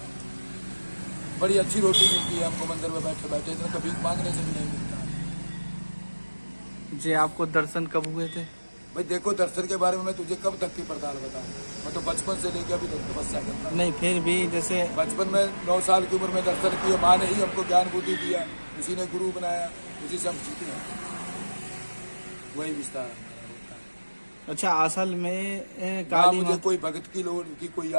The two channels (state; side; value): inverted; both; correlation -1.00